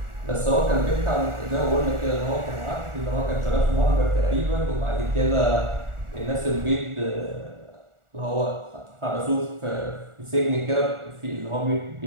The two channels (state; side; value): late; left; 1.4 ms